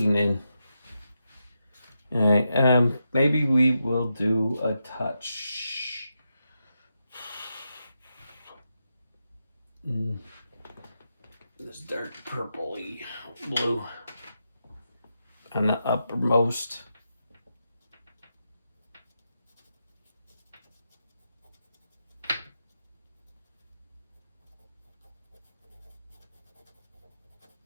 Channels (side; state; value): both; inverted; correlation -0.86